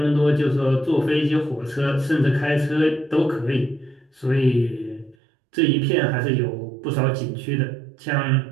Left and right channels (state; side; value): drops out; left; at 5.2 s